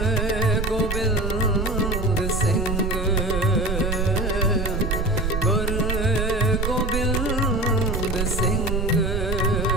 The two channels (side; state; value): right; noise; rumble, 1 dB below the sound